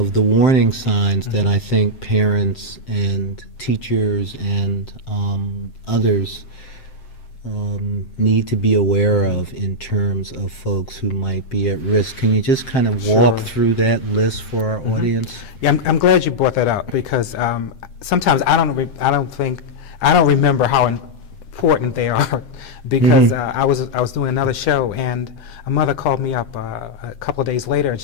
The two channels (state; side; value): late; right; 7.7 ms